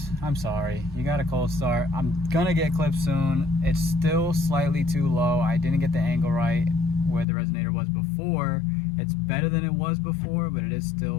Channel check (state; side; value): drops out; right; at 7.2 s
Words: I'm sorry, you got a cold start. I'm gonna get clips soon. It's still slightly too low. I didn't get the angle right where the resonator was before, It's better than it was before, but it is